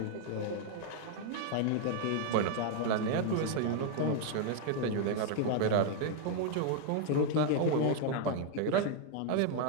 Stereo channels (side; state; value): both; different; correlation 0.00